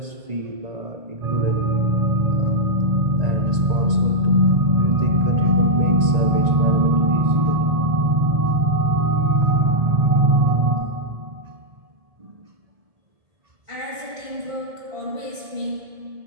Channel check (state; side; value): late; left; 1.7 ms